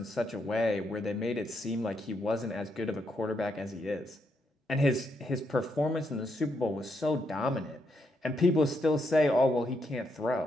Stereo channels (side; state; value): both; normal; correlation 0.79